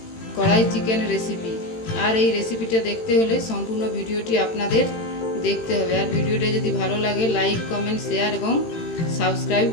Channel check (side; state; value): right; late; 18 ms